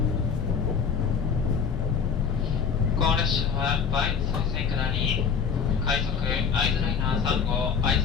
この列車は梅津再生下り快速会津ライナー3号会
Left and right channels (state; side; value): quieter; right; 6.5 dB